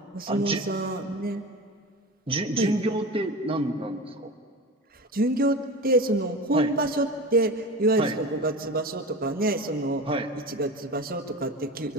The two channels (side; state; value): both; normal; correlation 0.29